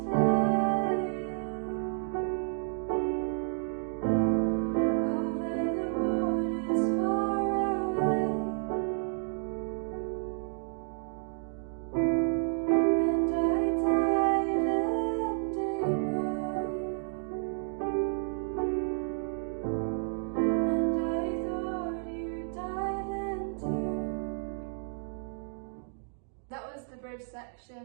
That was the bridge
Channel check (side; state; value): left; silent; 57 dB below the other